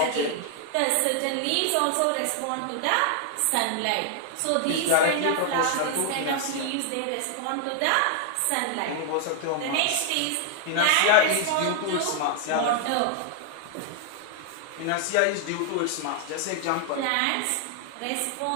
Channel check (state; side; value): different; both; correlation 0.00